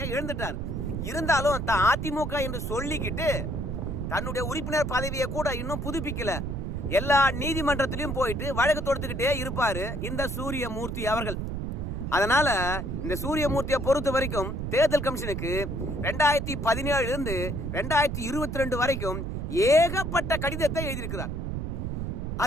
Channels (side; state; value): right; noise; rumble, 3 dB below the sound